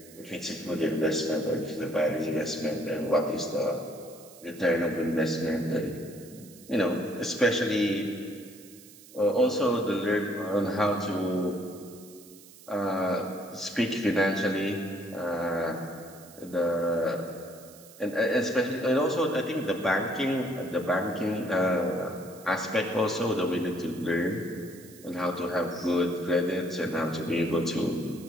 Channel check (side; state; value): right; noise; hiss, 21 dB below the sound